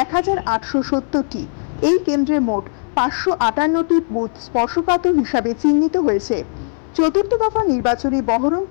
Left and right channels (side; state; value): right; silent; 64 dB below the other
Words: 1,870টি। এই কেন্দ্রে মোট 558টি বুথ স্পর্শকাতর হিসাবে চিহ্নিত হয়েছে। চতুর্থ দফা নির্বাচনে